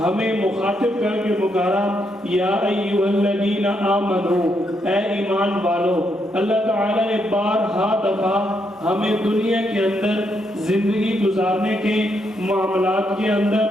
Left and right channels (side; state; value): both; normal; correlation 0.78